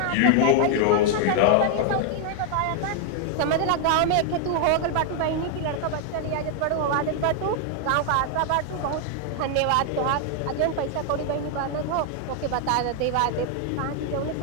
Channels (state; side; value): different; both; correlation 0.00